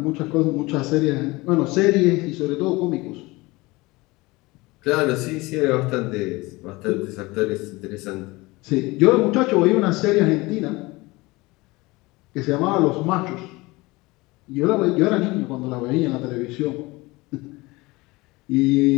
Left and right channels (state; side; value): quieter; right; 22.3 dB